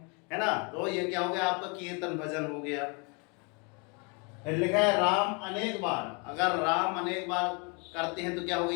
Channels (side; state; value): right; quieter; 32.9 dB